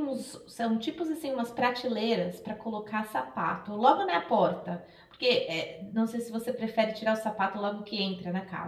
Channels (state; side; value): identical; both; correlation 1.00